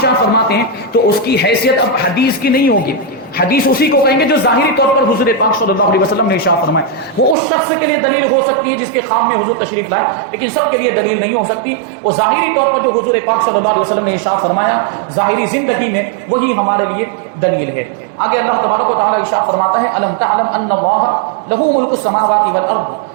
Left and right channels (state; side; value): drops out; left; at 7.4 s